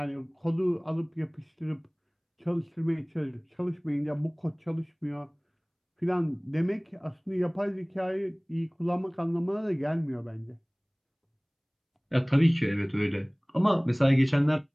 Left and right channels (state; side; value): identical; both; correlation 1.00